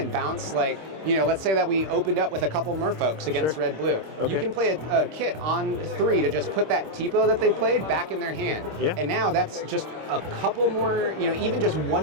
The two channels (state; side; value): late; left; 26 ms